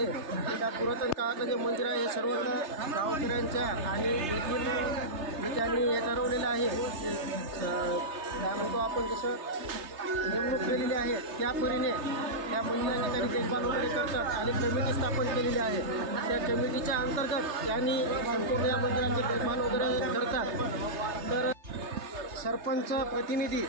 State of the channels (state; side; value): late; left; 3.3 ms